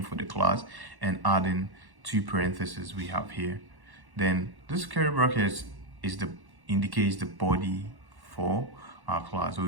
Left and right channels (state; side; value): late; left; 1.1 ms